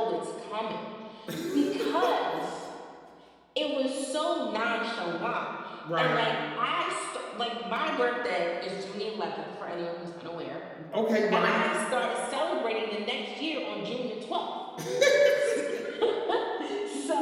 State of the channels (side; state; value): both; identical; correlation 1.00